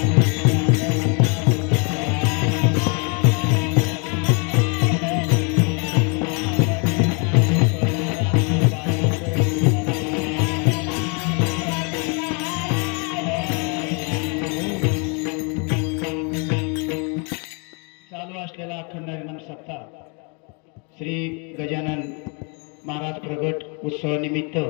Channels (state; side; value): quieter; right; 35.0 dB